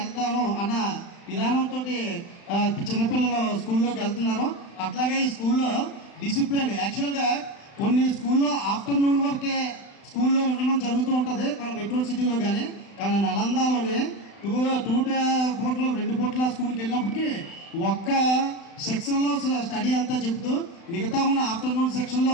అన్న విధానంతో చిన్నపిల్లలు స్కూల్లోకి వెళ్తున్నారు. అట్లాగే ఈ స్కూల్లో డిసిప్లిన్ యాక్చువల్గా కొన్ని స్కూల్లో ఆఫ్టర్నూన్ వరకే స్కూల్లో ఉండడం జరుగుతూ ఉంటుంది మన మెట్రో సిటీలో కానీ నలందాలోనే 2 పూటలు 2 పూటల స్కూల్కి వెళ్ళినప్పటికీ ఒక్క సెక్షన్లో స్టడీ అంతా చెప్తూ మిగతా ఉన్న ఆఫ్టర్నూన్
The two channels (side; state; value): right; late; 35 ms